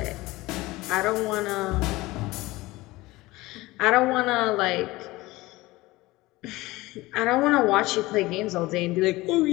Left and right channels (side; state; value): right; quieter; 19.9 dB